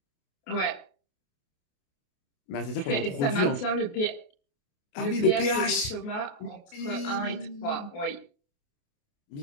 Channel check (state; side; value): late; right; 28 ms